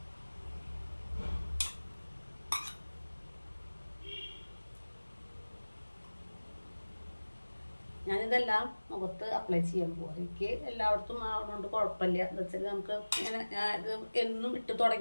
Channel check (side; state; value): both; inverted; correlation -1.00